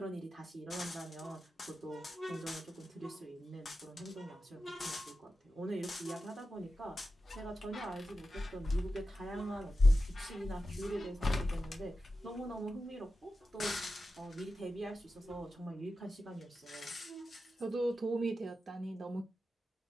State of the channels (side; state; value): both; normal; correlation 0.92